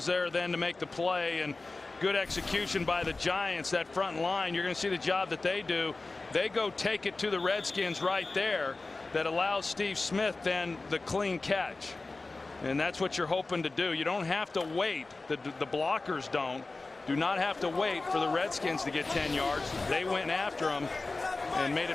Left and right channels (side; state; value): right; quieter; 3.4 dB